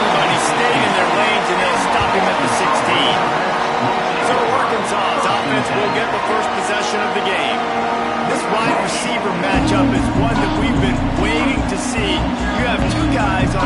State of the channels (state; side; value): identical; both; correlation 1.00